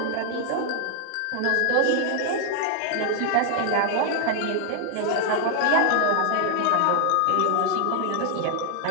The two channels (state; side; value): different; both; correlation 0.00